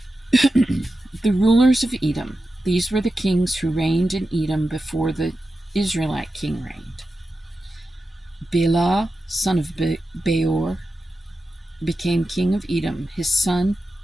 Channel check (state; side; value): normal; both; correlation 0.91